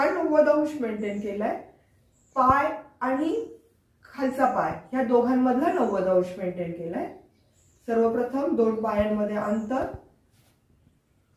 90 अंश मेंटेन केलाय, पाय आणि खालचा पाय ह्या दोघांमधला 90 अंश मेंटेन केलाय। सर्वप्रथम दोन पायांमध्ये अंतर,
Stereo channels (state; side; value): identical; both; correlation 1.00